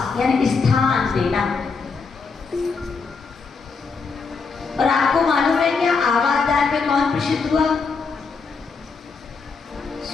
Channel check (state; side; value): quieter; right; 4.9 dB